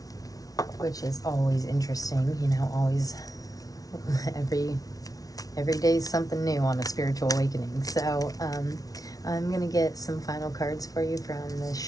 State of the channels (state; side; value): late; right; 0.18 ms